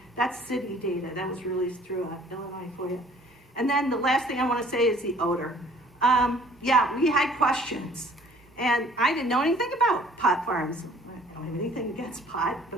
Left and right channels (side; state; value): both; normal; correlation 0.55